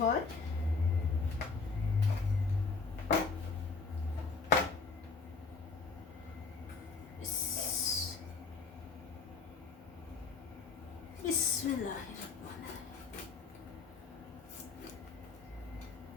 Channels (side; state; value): right; quieter; 4.5 dB